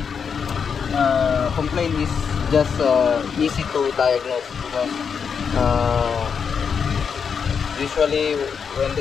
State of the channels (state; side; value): quieter; right; 6.5 dB